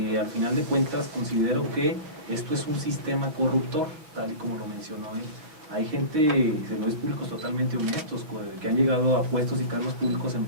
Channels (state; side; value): late; left; 6.3 ms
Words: al final de cuentas considero que esto es un sistema corruptor, tal y como lo mencionó él. Hay gente, servidores públicos totalmente honestos, que han llegado a puestos y cargos públicos en